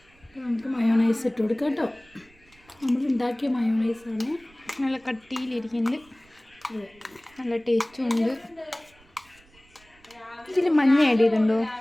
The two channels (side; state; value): right; noise; rumble, 29 dB below the sound